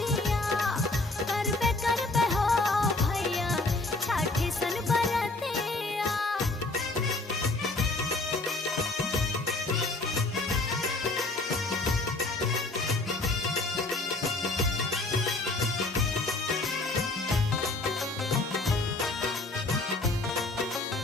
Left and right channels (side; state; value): right; quieter; 3.1 dB